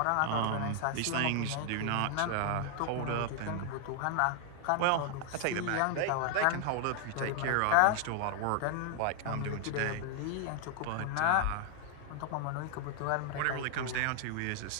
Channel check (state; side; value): different; both; correlation 0.00